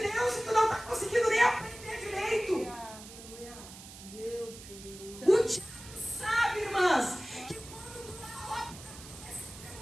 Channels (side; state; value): right; noise; hiss, 16 dB below the sound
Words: Deus e tu não